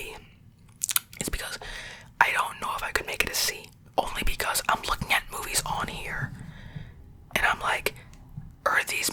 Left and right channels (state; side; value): identical; both; correlation 1.00